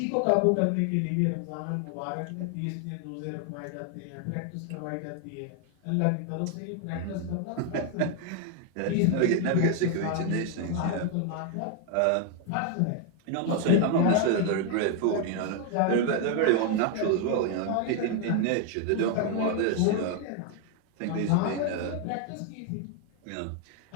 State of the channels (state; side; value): different; both; correlation 0.00